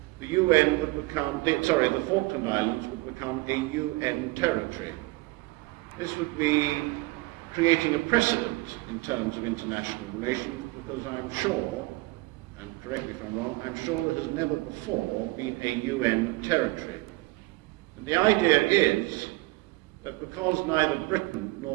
the the Falkland Islands would become a UN territory. This would be creating a precedent in terms of international relations, because I'm sure, and correct me if I'm wrong, I'm sure there has never before been a UN territory. And the idea is that because neither Britain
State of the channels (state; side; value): quieter; left; 21.9 dB